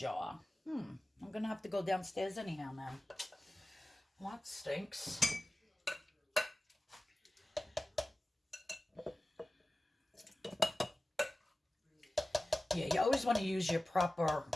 I'm gonna have to go downstairs anyhow now. Well, that stinks. Yeah, you always want to use your proper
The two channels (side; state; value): both; normal; correlation 0.96